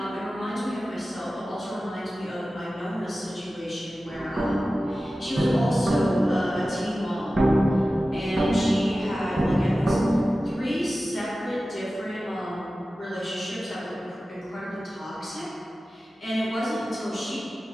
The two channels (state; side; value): normal; both; correlation 0.95